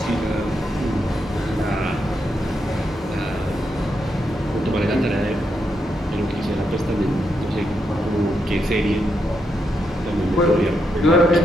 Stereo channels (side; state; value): both; normal; correlation 0.82